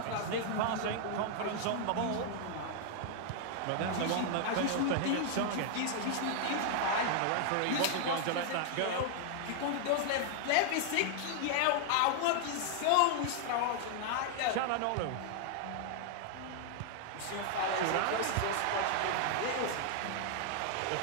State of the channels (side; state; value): both; different; correlation 0.00